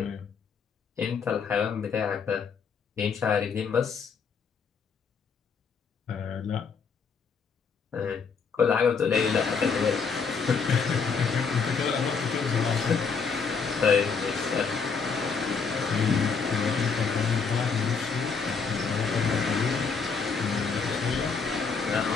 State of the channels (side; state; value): right; quieter; 5.5 dB